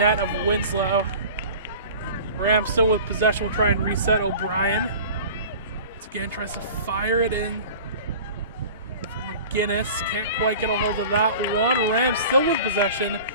of Winslow. Rams still with possession. Will try and reset O'Brien. Once again, tries to fire it in for McGinnis. Can't quite get a hold of that one. Rams still with possession.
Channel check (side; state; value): both; inverted; correlation -0.41